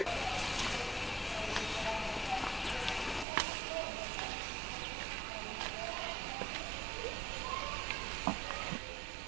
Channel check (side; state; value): left; drops out; at 3.2 s